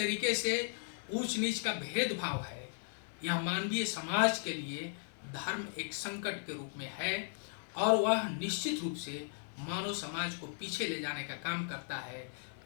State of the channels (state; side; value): silent; right; digital silence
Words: से ऊंच नीच का भेदभाव है, यह मानवीय समाज के लिए धर्म एक संकट के रूप में है और वह निश्चित रूप से मानव समाज को पीछे ले जाने का काम करता है।